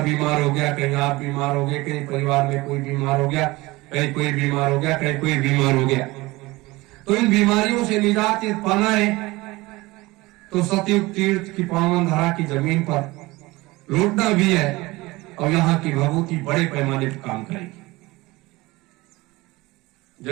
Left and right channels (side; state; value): left; quieter; 21.0 dB